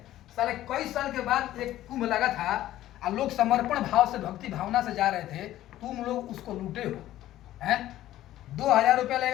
साले कई साल के बाद एक कुंभ लगा था और लोग समर्पण भाव से, भक्ति भावना से जा रहे थे, तुम लोग उसको लूटे हो हैं। 2000 रुपया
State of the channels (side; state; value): right; quieter; 13.9 dB